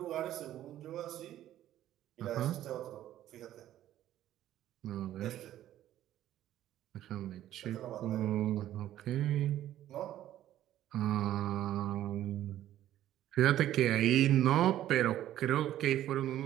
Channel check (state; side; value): quieter; left; 12.7 dB